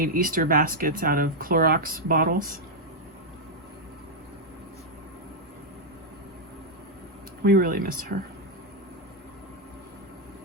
Easter baskets out of Clorox bottles. We really miss her.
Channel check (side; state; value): both; normal; correlation -0.02